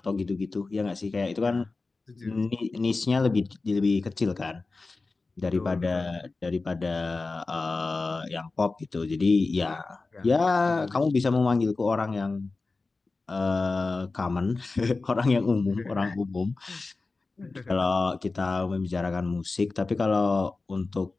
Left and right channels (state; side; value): quieter; right; 3.7 dB